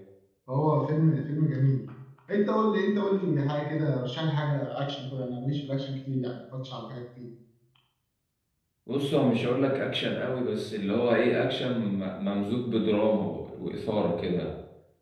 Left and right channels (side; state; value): both; identical; correlation 1.00